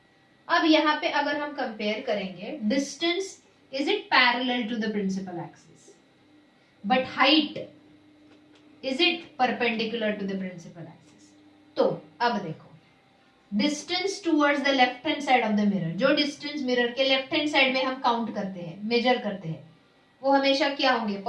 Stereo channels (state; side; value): identical; both; correlation 1.00